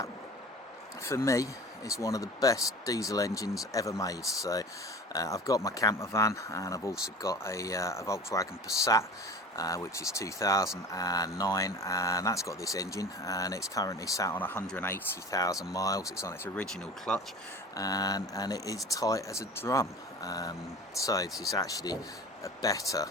for me, is one of the best diesel engines ever made. So I've got my camper van, and I've also got a Volkswagen Passat, which is 2009, and that's got this engine, and it's currently sat on 180,000 miles. It's on its original clutch, and it is tight as a drum. So this is actually a better,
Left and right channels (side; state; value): both; normal; correlation 0.38